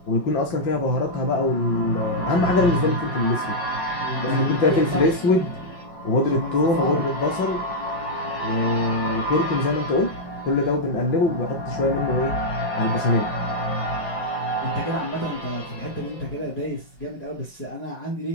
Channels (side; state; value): right; late; 5.4 ms